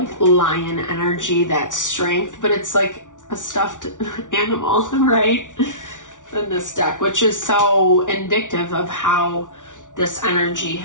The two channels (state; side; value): late; right; 0.87 ms